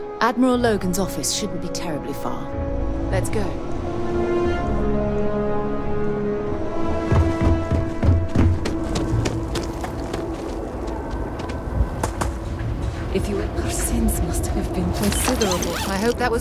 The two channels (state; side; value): identical; both; correlation 1.00